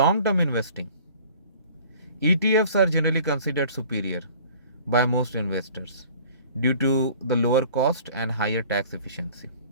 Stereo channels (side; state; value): both; inverted; correlation -0.49